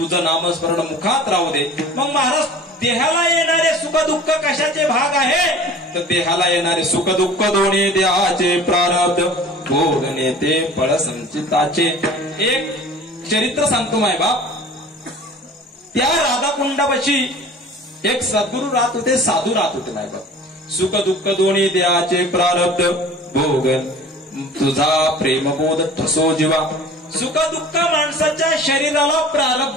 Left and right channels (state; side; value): normal; both; correlation 0.43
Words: नामस्मरण मुखात राहू दे. मग महाराज देहाला येणारे सुख दुःख कशाचे भाग आहे तर देहाला येणारे सुख दुःख दोन्ही देहाचे प्रारब्ध भोगणे ते फळ संचिताचे. एक चरित्र सांगतो माय बाप. त्या राधाकुंडापाशी एक सद्गुरू राहत होते साधू राहत होते माय बाप. सुख दुःख दोन्ही देहाचे प्रारब्ध भोगन तुझा प्रेमबोध ठसो जीवा. सुख दुःख माणसाच्या शरीराला